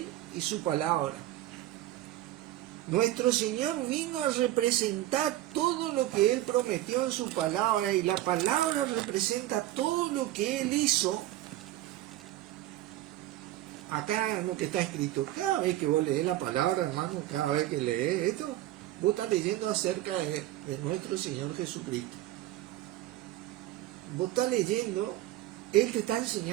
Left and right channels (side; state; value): left; quieter; 14.7 dB